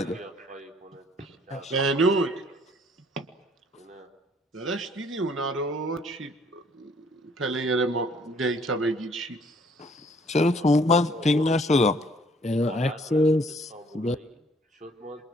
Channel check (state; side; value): normal; both; correlation 0.61